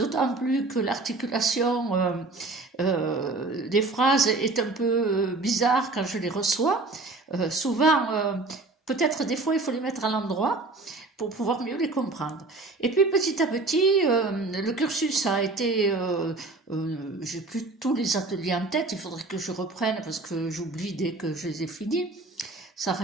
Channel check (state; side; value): quieter; left; 3.3 dB